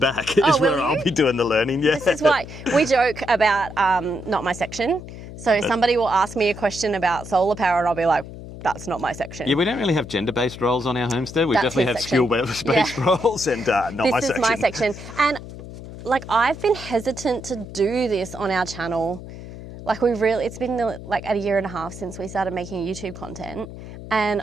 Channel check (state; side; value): noise; left; hum, 13 dB below the sound